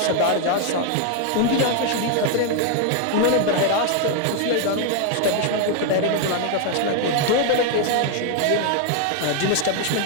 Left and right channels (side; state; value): both; different; correlation 0.01